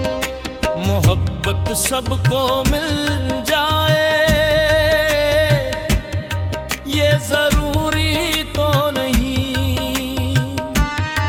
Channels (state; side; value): identical; both; correlation 1.00